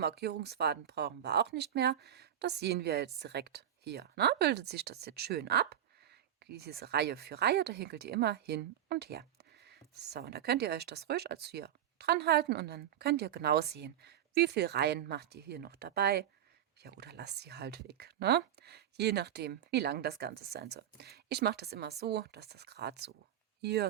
brauchen wir auch nicht mehr. Das sehen wir jetzt direkt hier. Ne? Bildet sich das jetzt schön ab. Diese Reihe für Reihe, da hinkelt ihr immer hin und her. So, und da könnt ihr euch das ruhig als hier dran halten und dann könnt ihr genau sehen, wie viele Reihen macht ihr hier noch dabei. Ja, oder lasst sie halt weg, ne? Je nachdem, wie lang das Ganze sein soll. Ich mache das immer so, dass das gerade so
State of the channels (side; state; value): left; quieter; 10.7 dB